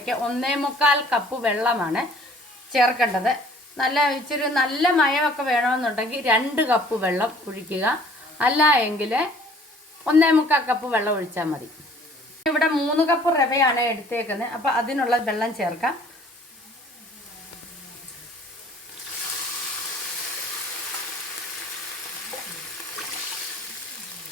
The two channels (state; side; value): normal; both; correlation 0.54